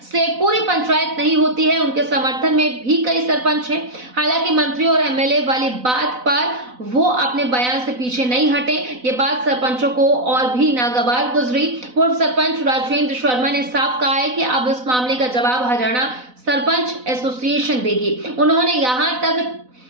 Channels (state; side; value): late; left; 4.0 ms